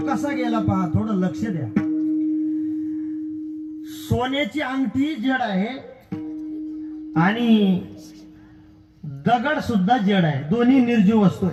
गेला पहा, थोडं लक्ष द्या. सोन्याची अंगठी जड आहे आणि दगड सुद्धा जड आहे, दोन्ही निर्जीव वस्तू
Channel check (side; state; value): both; identical; correlation 1.00